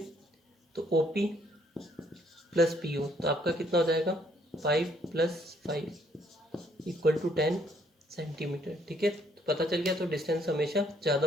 तो O P plus P O, तो आपका कितना हो जाएगा 5 + 5 इक्वल टू 10 सेंटीमीटर। ठीक है, तो पता चल गया, तो डिस्टेंस हमेशा ज़्यादा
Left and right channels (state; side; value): normal; both; correlation 0.67